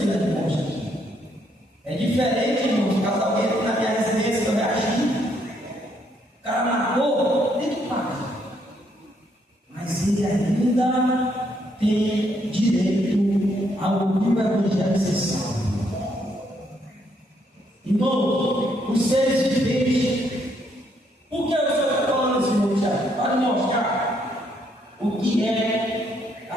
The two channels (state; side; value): normal; both; correlation 0.72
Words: de morte aqui. É diferente, irmãos, caso alguém aqui na minha residência eu reagir. O cara matou, tem que pagar. Mas ele ainda tem direito ao ouvir o Evangelho ser salvo. Irmão, os seres viventes, por que o Senhor está falando assim, meu Tiago? Para mostrar o que é a